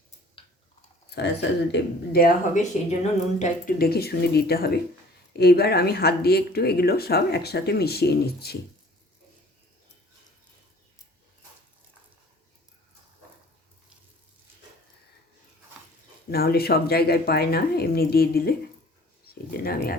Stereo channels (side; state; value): both; normal; correlation 0.51